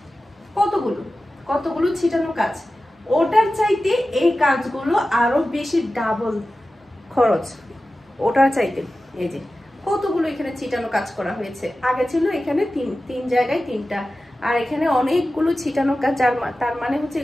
কতগুলো ছিটানো কাজ। ওটার চাইতে এই কাজগুলো আরো বেশি ডাবল খরচ ওটার চাইতে। এই যে কতগুলো এখানে ছিটানো কাজ করা হয়েছে। আগে ছিল এখানে তিন জায়গায় 3টা, আর এখানে অনেকগুলো ছিটানো কাজ, তার মানে হচ্ছে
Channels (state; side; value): normal; both; correlation 0.94